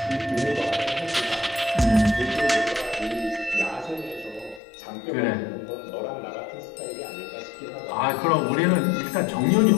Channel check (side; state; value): right; drops out; at 4.6 s